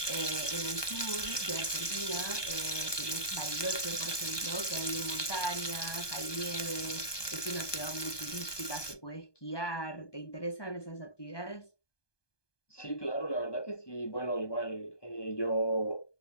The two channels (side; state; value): right; late; 1.2 ms